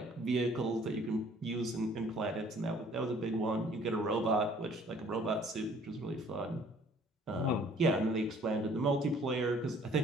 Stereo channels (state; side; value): normal; both; correlation 0.56